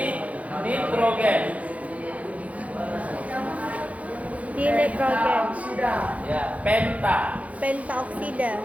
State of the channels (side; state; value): left; late; 0.067 ms